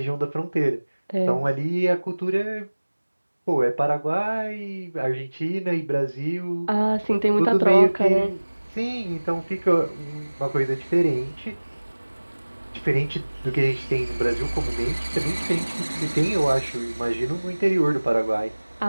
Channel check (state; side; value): inverted; both; correlation -1.00